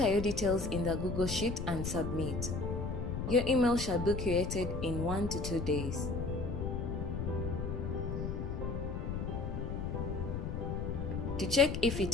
your details in the Google Sheet and submit. Your email shall be created in 1 to 2 days. To check if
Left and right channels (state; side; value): noise; left; rumble, 3 dB below the sound